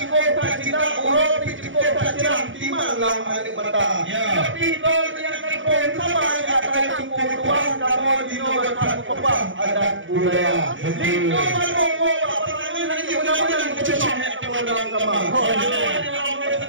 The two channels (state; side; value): late; left; 0.56 ms